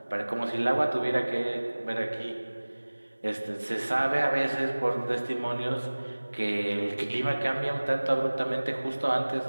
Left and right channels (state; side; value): inverted; both; correlation -1.00